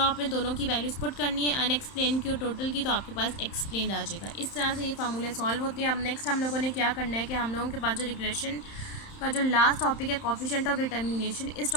दोनों की वैल्यूज़ पुट करनी है, अनएक्सप्लेन की और टोटल की, तो आपके पास एक्सप्लेन आ जाएगा। इस तरह से ये फार्मूले सॉल्व होते हैं। अब नेक्स्ट हम लोगों ने क्या करना है कि हम लोगों के पास जो रिग्रेशन का जो लास्ट टॉपिक है कोफिशिएंट ऑफ डिटर्मिनेशन, इस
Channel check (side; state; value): right; late; 31 ms